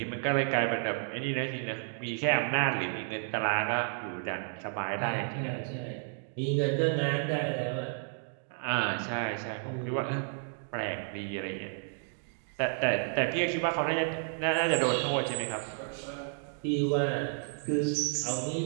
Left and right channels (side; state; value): left; silent; 57 dB below the other